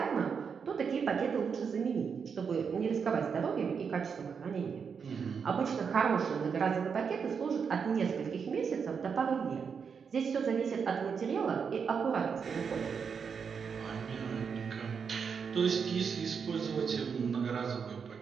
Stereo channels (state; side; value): quieter; left; 6.3 dB